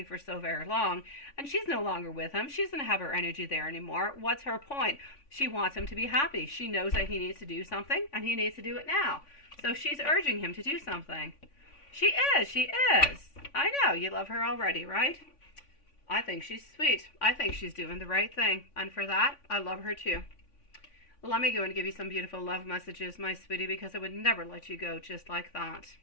for so very long. And she's no longer with him. She doesn't have her energy there anymore. What's her point? She wants him to be happy. She knows that he needs to do something, and he needs to do it now. So she's urging him to do something. She is. I know, you love her already, right? I think she's sweet. I think she's doing the right thing. And for that, I love her too. Let me go and give you some beautiful love messages, my sweetie, because I would never let you go just like that.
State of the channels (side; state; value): right; late; 3.5 ms